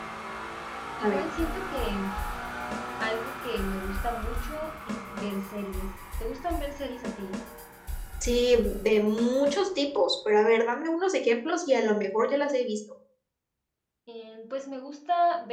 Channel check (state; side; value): identical; both; correlation 1.00